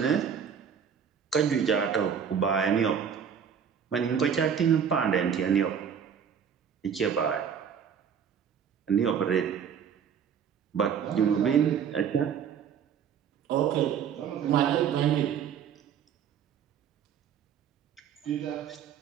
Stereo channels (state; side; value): quieter; left; 7.6 dB